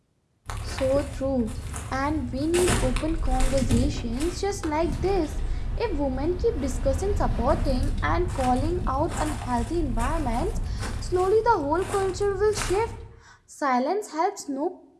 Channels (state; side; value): identical; both; correlation 1.00